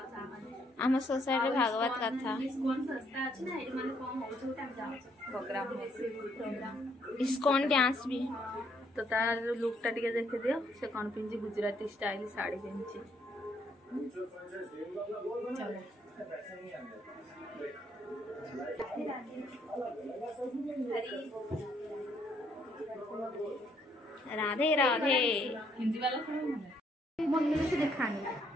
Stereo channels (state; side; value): normal; both; correlation 0.70